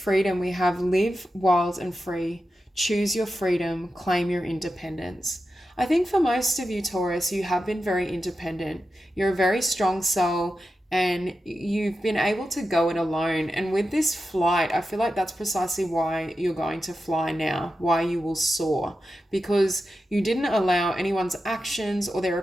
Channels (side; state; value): both; normal; correlation 0.91